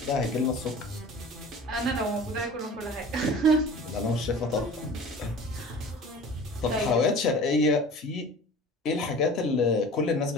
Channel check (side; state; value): both; normal; correlation 0.40